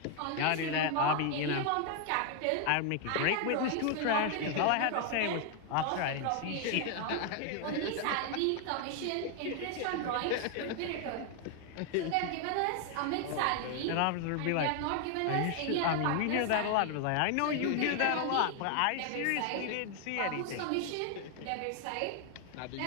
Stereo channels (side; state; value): both; different; correlation 0.00